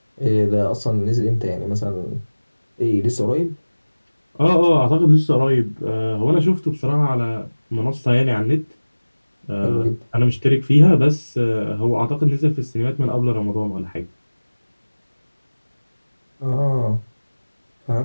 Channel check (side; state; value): both; inverted; correlation -1.00